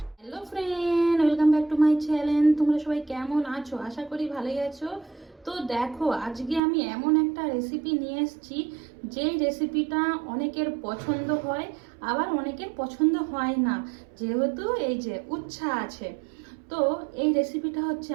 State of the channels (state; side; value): drops out; left; at 6.6 s